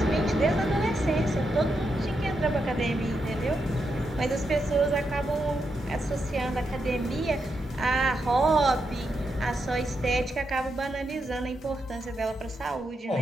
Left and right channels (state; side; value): normal; both; correlation 0.84